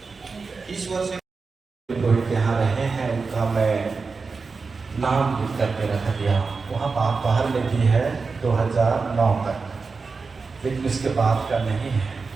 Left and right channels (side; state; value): left; quieter; 4.5 dB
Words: ईश्वर से रोहित यहाँ रहे हैं, उनका मैं नाम लिख करके रख दिया। वहाँ बाहर में भी है 2009 तक, लेकिन इसके बाद का नहीं है।